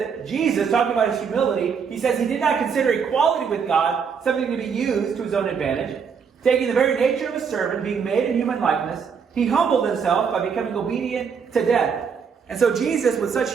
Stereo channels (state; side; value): quieter; left; 6.4 dB